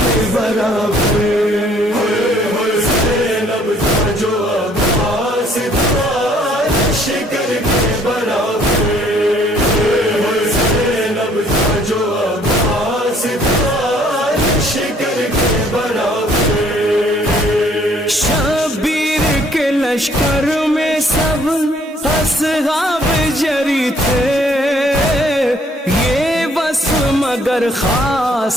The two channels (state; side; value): normal; both; correlation 0.62